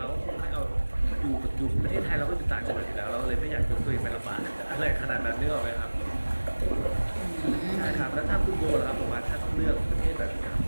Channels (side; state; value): both; inverted; correlation -1.00